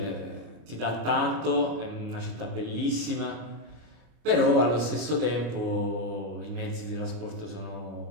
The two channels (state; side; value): late; left; 26 ms